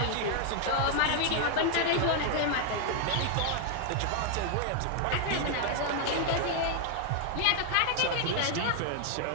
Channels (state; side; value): different; both; correlation 0.00